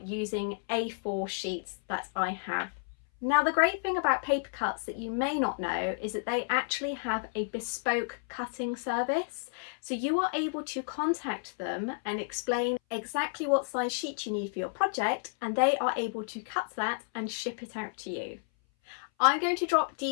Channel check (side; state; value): right; silent; 57 dB below the other